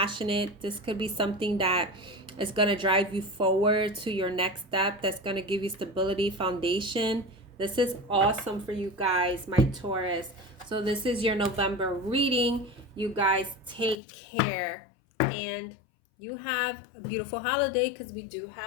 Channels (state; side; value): drops out; right; at 14.0 s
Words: This could be something that is going to drive you forward to your next step. That's going to give you stability, foundation. This is awesome for you guys, my Taurus. So this is your November reading. You guys take care. And you have a beautiful holiday, because we do